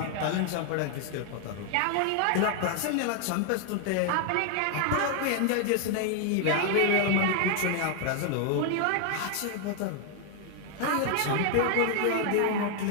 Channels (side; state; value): both; different; correlation 0.00